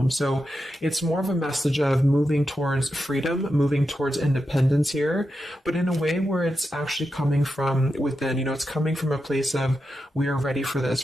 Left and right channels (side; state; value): both; normal; correlation 0.88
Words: So it's more of a message of moving towards freedom, moving towards independence here, but in a way where it's actually coming from within. It's coming from a place of, we are ready for